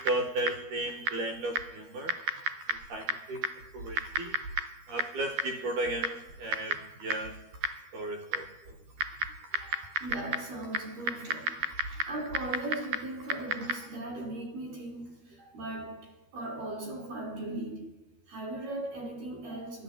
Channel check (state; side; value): late; left; 13 ms